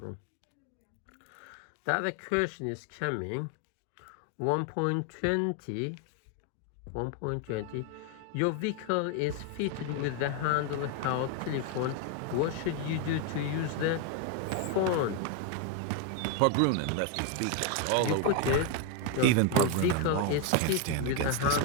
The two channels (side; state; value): both; different; correlation 0.01